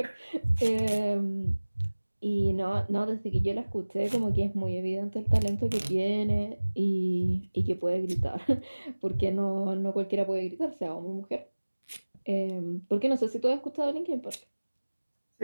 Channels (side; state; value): both; inverted; correlation -1.00